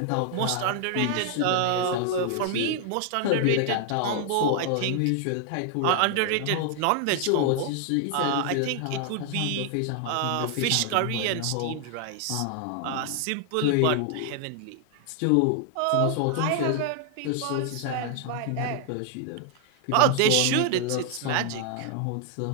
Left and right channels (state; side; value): different; both; correlation 0.00